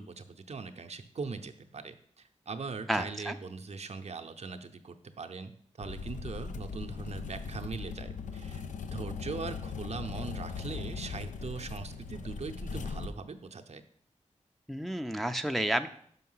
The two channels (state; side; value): normal; both; correlation 0.70